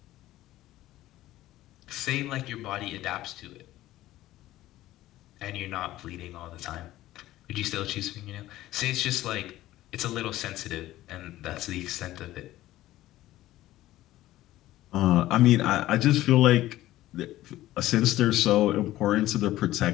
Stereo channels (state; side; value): quieter; right; 15.4 dB